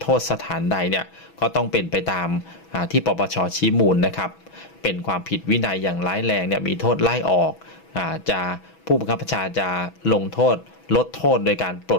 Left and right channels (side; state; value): right; late; 6.1 ms